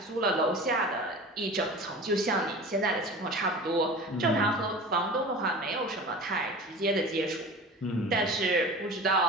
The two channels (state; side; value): normal; both; correlation 0.36